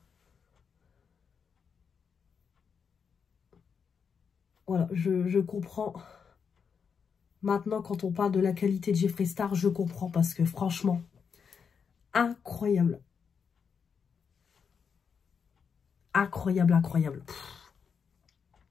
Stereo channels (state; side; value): quieter; right; 6.4 dB